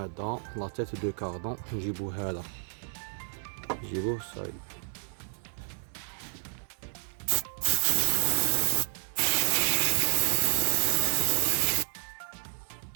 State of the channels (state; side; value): silent; left; digital silence